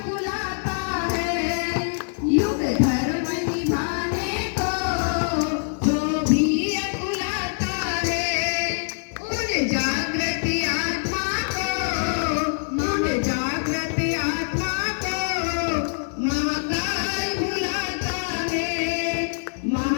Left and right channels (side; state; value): right; silent; 62 dB below the other